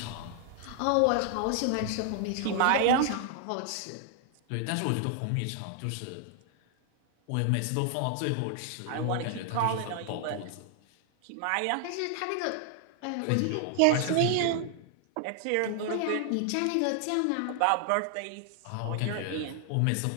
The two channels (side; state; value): both; different; correlation 0.00